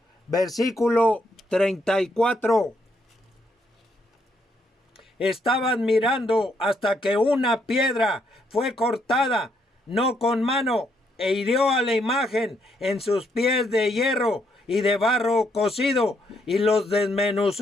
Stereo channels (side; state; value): both; normal; correlation 0.74